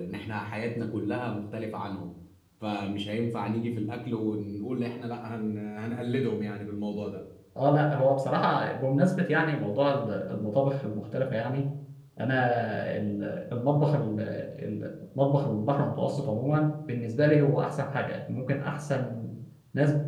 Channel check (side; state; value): both; identical; correlation 1.00